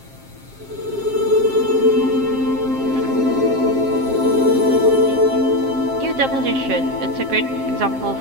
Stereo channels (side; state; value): left; late; 7.5 ms